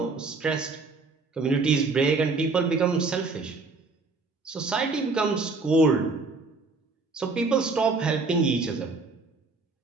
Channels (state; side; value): quieter; left; 3.9 dB